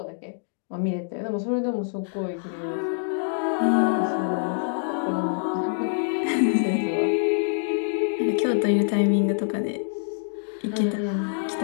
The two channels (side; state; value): right; silent; digital silence